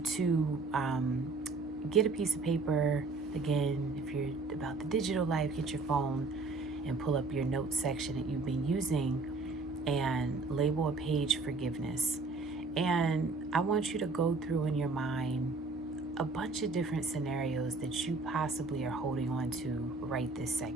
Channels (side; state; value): left; quieter; 3.8 dB